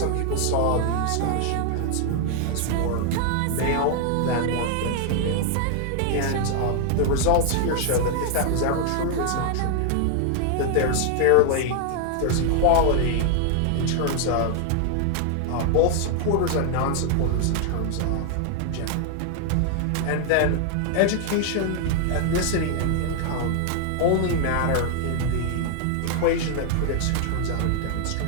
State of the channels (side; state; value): both; different; correlation 0.00